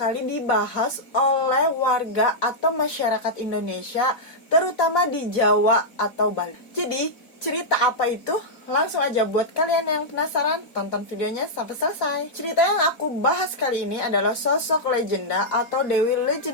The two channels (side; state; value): right; late; 4.0 ms